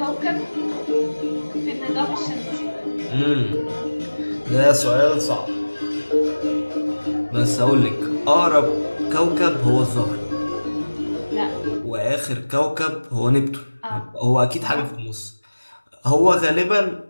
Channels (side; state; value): both; inverted; correlation -1.00